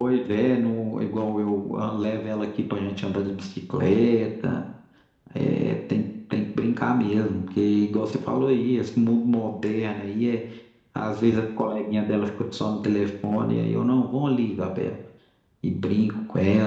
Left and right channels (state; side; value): identical; both; correlation 1.00